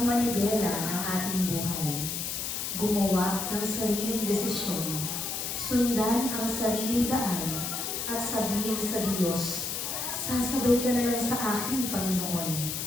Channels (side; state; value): left; noise; hiss, 3 dB below the sound